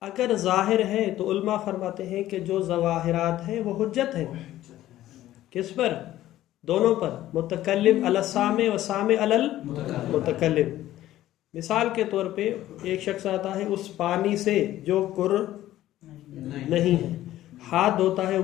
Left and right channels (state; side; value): quieter; right; 14.1 dB